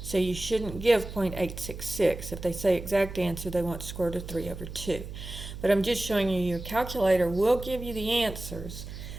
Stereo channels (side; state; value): right; noise; hum, 10 dB below the sound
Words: So you shouldn't give 0.866. If they say exact answer, they want square root of 3 over 2. But I'm just showing you your calculator will give you the answers,